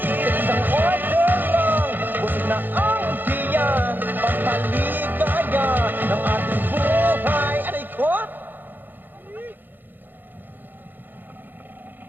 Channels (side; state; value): left; late; 0.089 ms